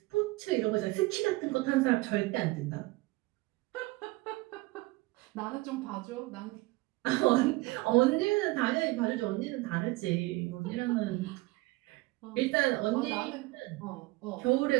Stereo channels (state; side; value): quieter; left; 21.8 dB